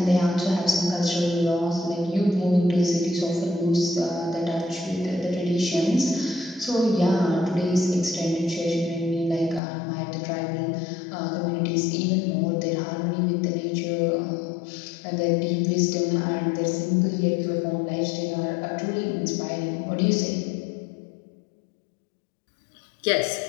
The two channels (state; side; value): drops out; right; at 9.6 s